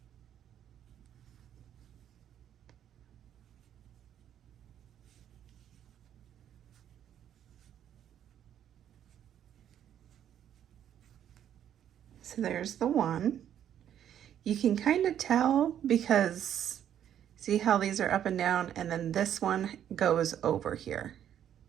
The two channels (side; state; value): left; quieter; 10.1 dB